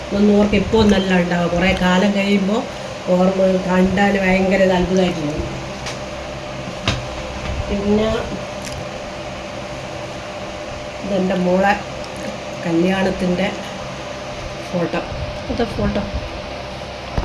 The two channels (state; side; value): identical; both; correlation 1.00